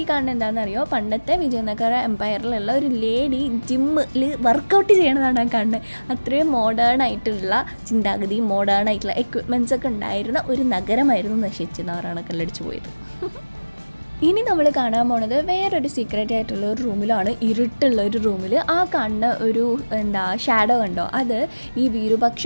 ഈ കാണുന്നത് എന്താണെന്നറിയോ, പണ്ടത്തെ വിജയനഗര എംപയറിലുള്ള ഒരു ലേഡി ജിമ്മിൽ വർക്കൗട്ട് ചെയ്യണതാണ് ആ കാണുന്നത്. അത്രയും മോഡേൺ ആയിട്ടുള്ള ചിന്താഗതി, മോഡേൺ ആയിട്ടുള്ള എക്വിപ്മെൻറ്റ്സ് ഒക്കെ ഉണ്ടായിരുന്ന ഒരു നഗരമായിരുന്നു നശിച്ച് നാറാണക്കല്ലടിച്ച് പോയത്. ഇനി നമ്മൾ കാണാൻ പോണത് വേറൊരു സീക്രട്ട് ആയിട്ടുള്ള ഒരു റൂമിലാണ്, ഇരുട്ടുള്ള ഒരു റൂമിൽ. ആ കാണുന്ന ഒരു ഷാഡോ കണ്ടോ, അത് ഈ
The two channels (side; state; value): both; inverted; correlation -1.00